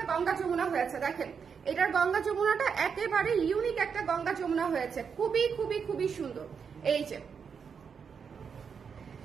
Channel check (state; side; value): quieter; left; 6.4 dB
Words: গঙ্গা যমুনা হয়েছে। দেখেন এটার গঙ্গা যমুনাটা একেবারে ইউনিক একটা গঙ্গা যমুনা হয়েছে, খুবই খুবই খুবই সুন্দর। এই যে